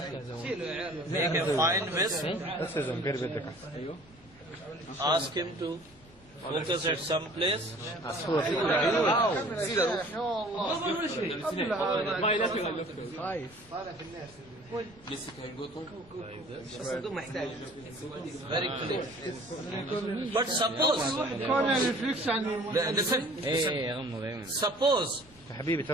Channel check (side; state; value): left; noise; rumble, 26 dB below the sound